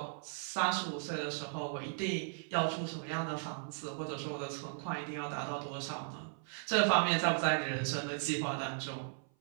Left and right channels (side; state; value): left; silent; 53 dB below the other